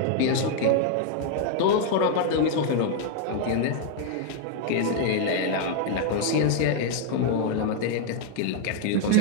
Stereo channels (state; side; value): different; both; correlation 0.00